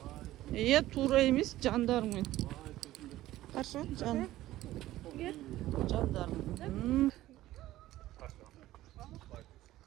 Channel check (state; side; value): quieter; left; 15.3 dB